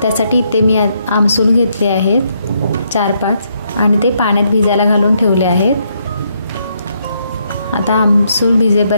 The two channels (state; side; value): inverted; both; correlation -0.75